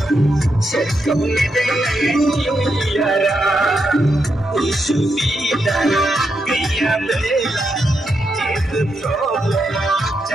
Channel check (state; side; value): normal; both; correlation 0.83